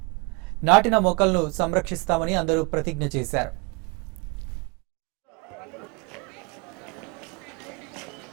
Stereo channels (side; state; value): left; quieter; 29.2 dB